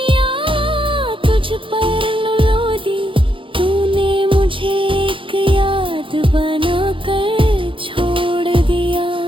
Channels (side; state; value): left; late; 0.25 ms